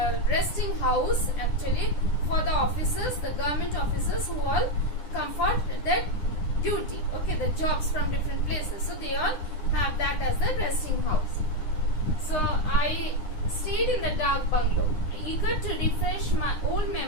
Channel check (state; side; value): late; right; 9.9 ms